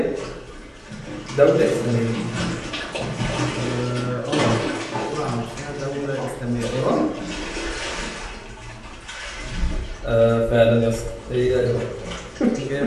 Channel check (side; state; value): both; identical; correlation 1.00